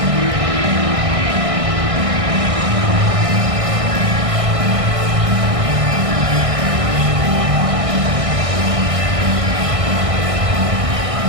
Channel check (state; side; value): late; left; 1.6 ms